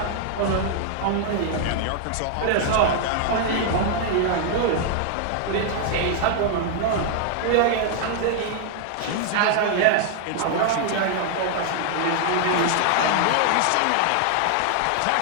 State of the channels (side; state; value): both; different; correlation 0.00